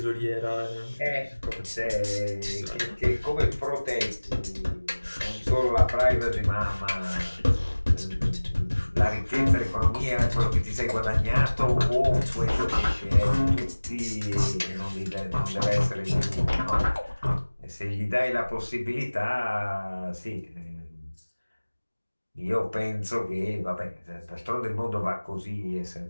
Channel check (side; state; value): both; inverted; correlation -1.00